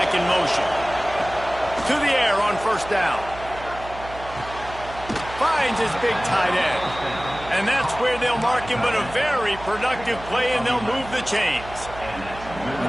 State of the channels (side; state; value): right; noise; hum, 14 dB below the sound